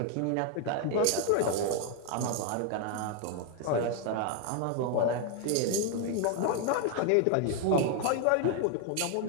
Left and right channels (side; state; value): both; different; correlation 0.00